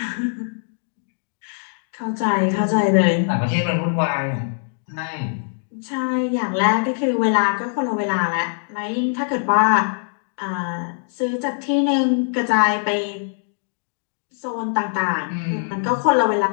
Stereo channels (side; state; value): right; silent; digital silence